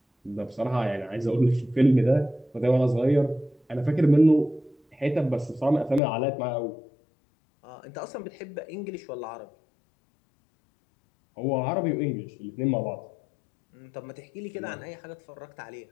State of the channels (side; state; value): right; drops out; at 6.0 s